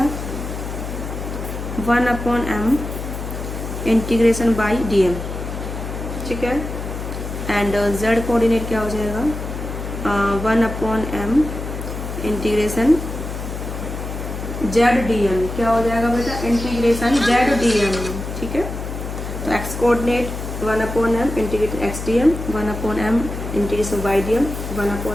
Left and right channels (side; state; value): left; noise; hum, 7 dB below the sound